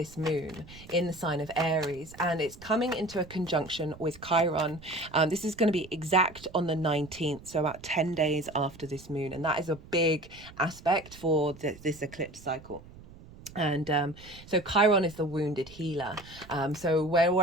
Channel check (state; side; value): noise; right; rumble, 19 dB below the sound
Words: moon in the sign of Aries, and it's coming into a conjunction with Chiron. This is going to be exact on the 19th, so about 10 days after this moon, and that is a big aspect for this eclipse cycle. And so Chiron is the wounded healer. So